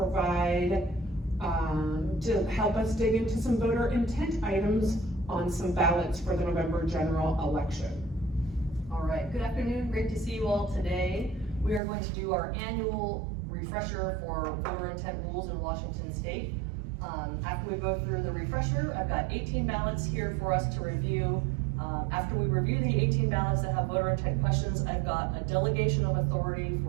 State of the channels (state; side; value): drops out; left; at 11.8 s